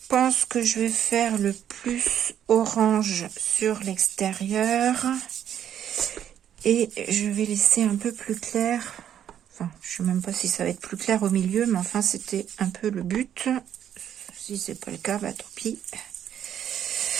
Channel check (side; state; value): left; quieter; 9.9 dB